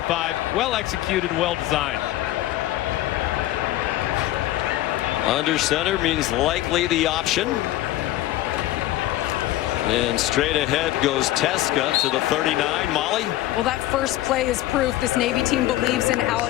Well executed, well designed. Under center means likely the option. And straight ahead goes Teska to the 39. Molly? Well, that first play is proof this Navy team believes in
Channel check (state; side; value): quieter; right; 15.3 dB